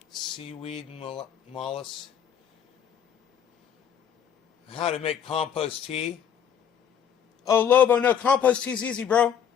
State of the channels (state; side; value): quieter; right; 8.4 dB